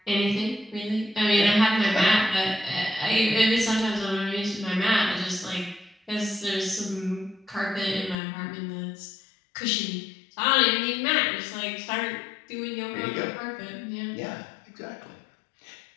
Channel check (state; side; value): drops out; right; at 8.2 s